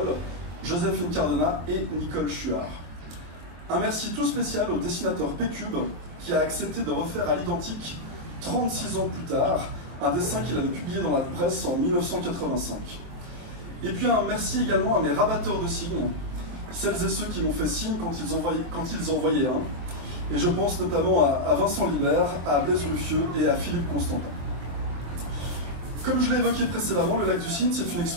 Joséphine Cardona et Nicole Chuard. Un merci tout spécial au dessinateur P-Cube qui a accepté de refaire à l'identique, 36 ans plus tard, un dessin qu'il avait publié dans la presse en 1985. Et puis un merci également à mes rabatteurs de signes, celles et ceux qui m'ont fait signe quand ils en voyaient un. Et je pense notamment à Vincent Libert, à Blaise Ruffieux et à Philippe Constantin. Comme je l'ai évoqué précédemment, le Lac du Cygne, c'est une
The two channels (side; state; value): left; late; 24 ms